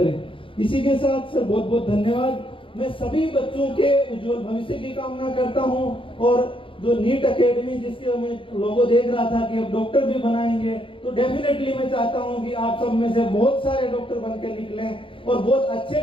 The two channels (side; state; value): right; late; 0.25 ms